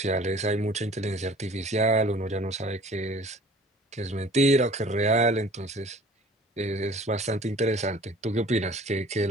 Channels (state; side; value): normal; both; correlation 0.49